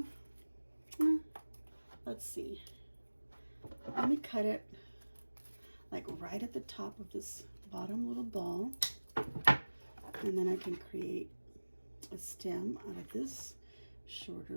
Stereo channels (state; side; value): inverted; both; correlation -1.00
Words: Let's see. Let me cut it like right at the top of this bottom little ball, and then I can create a stem out of this